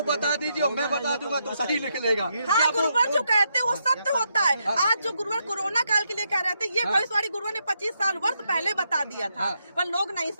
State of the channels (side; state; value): both; inverted; correlation -0.80